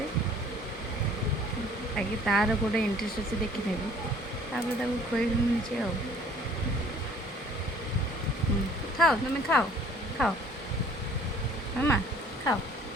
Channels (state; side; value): normal; both; correlation 0.54